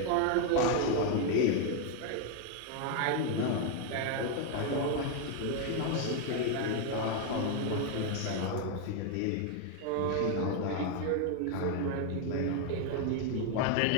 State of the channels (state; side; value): different; both; correlation 0.01